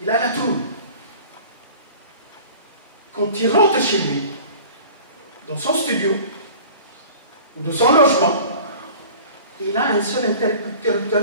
Il a la trouille. Quand il rentre chez lui, dans son studio, ou de son logement, il a un seul interrupteur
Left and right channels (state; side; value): inverted; both; correlation -0.43